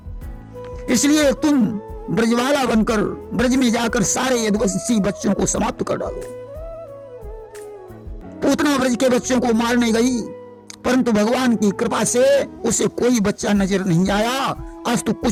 इसलिए तुम ब्रजवाला बनकर ब्रज में जाकर सारे यदुवंशी बच्चों को समाप्त कर डालो। पूतना ब्रज के बच्चों को मारने गई परंतु भगवान की कृपा से उसे कोई बच्चा नजर नहीं आया। आज तो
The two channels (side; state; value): both; identical; correlation 1.00